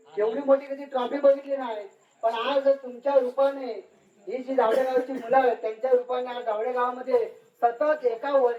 एवढी मोठी कधी ट्रॉफी बघितली नाही. पण आज तुमच्या रूपाने ही जी जावडे गावची मुलं आहेत त्यांच्या रूपाने आज जावडे गावामध्ये सतत एका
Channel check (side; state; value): both; identical; correlation 1.00